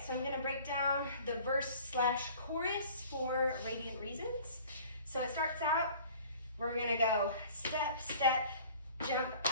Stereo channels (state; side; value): inverted; both; correlation -0.49